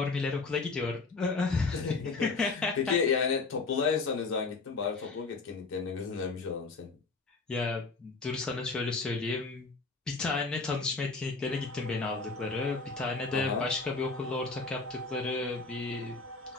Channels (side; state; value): right; quieter; 4.1 dB